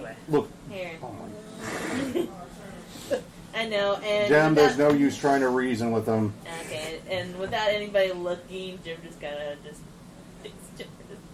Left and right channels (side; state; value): both; identical; correlation 1.00